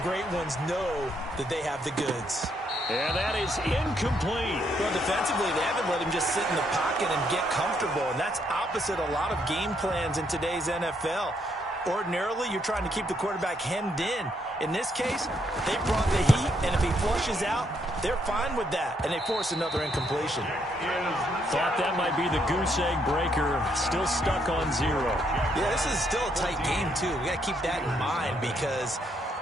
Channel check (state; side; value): normal; both; correlation 0.74